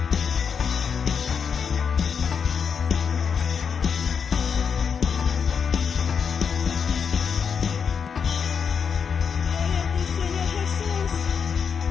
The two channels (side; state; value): right; quieter; 6.6 dB